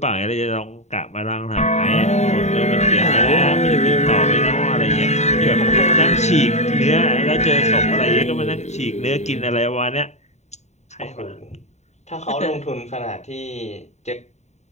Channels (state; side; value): late; right; 0.33 ms